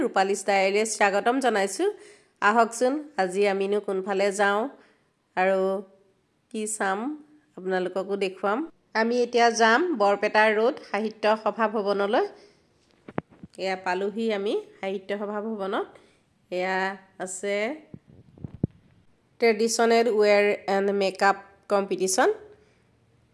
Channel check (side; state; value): both; identical; correlation 1.00